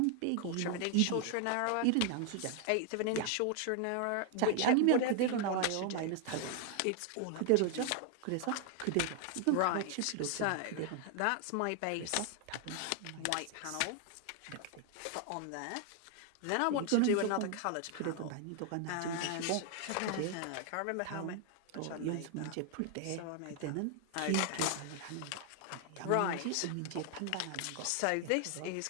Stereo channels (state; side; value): different; both; correlation 0.00